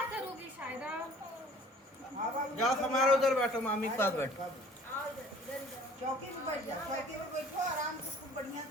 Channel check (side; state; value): both; normal; correlation 0.51